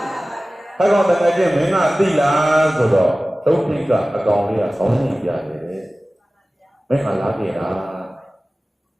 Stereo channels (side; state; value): both; normal; correlation 0.97